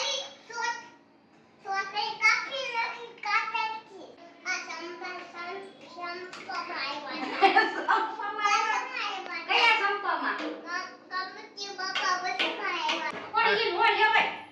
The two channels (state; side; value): identical; both; correlation 1.00